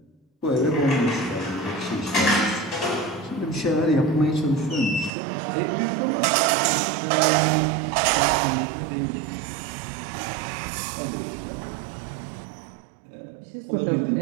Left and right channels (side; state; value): left; drops out; at 5.1 s